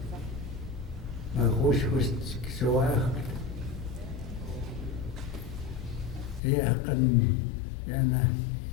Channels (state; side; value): drops out; right; at 6.4 s